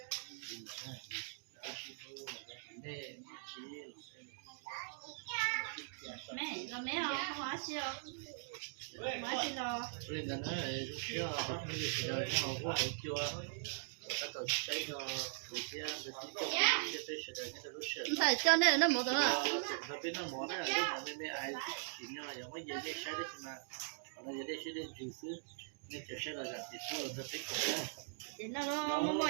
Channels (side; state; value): left; silent; digital silence